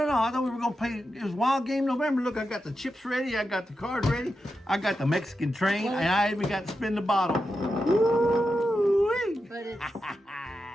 thought we were gonna play. It was Wild Game November. Look, I got the chips ready. I got the cards ready. I got the Mexican train, and I even got to spin the bottle. Woo-wee. But it's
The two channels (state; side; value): normal; both; correlation 0.88